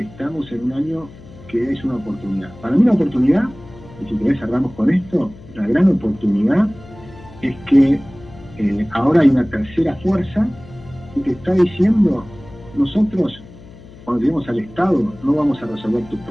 en un año que es una oportunidad. Para mí la oportunidad, y si querés cerramos con esto, la gran oportunidad es que ahora hay una tercera fuerza que te está diciendo, nosotros cuando lleguemos al Estado no vamos a resolver tus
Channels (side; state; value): left; noise; hum, 20 dB below the sound